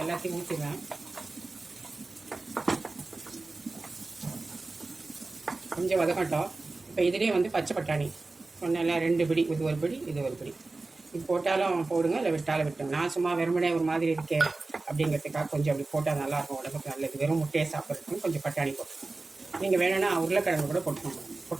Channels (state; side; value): quieter; left; 3.4 dB